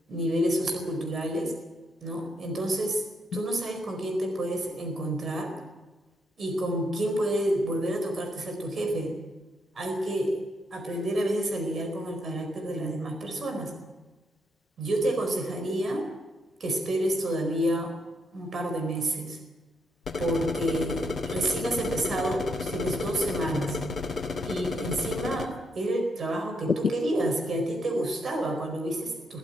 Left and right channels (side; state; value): both; normal; correlation 0.77